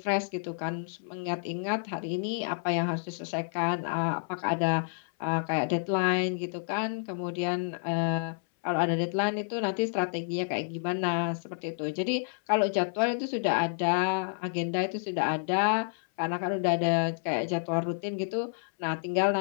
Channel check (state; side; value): silent; right; 58 dB below the other